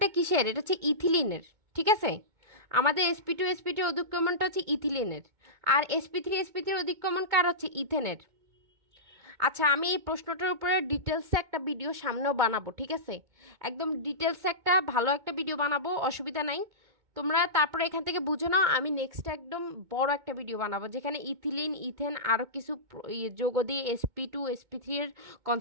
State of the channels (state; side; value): late; left; 2.2 ms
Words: কিসের? এটা হচ্ছে ইথিলিনের, ঠিক আছে? আমাদের sp2 অধিক্রমণটা হচ্ছে ইথিলিনের, আর sp3 অধিক্রমণ কার? হচ্ছে ইথেনের। আচ্ছা, আমি এই প্রশ্নটার উপরে ডিটেলসে একটা ভিডিও সামনেও বানাবো, ঠিক আছে? একদম ডিটেলসে একটা ভালো একটা ভিডিও বানাবো, অসুবিধা নাই। তোমরা তারপরে এখান থেকে বুঝো নাও, আমি নেক্সট একদম বড় একটা ভিডিও বানাবো যেখানে ইথিলিন ইথেন আরও কিছু যোগ দিয়ে sp2 এর